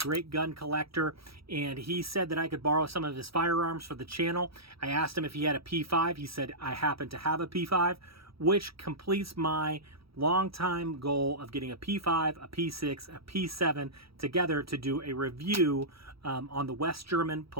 gun collector, and he said that I could borrow some of his firearms for the channel. I asked him if he had a P5. He said I happen to have a P5, which completes my long-time goal of getting a P5, a P6, a P7 together to do a review on the West German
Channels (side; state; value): left; late; 0.76 ms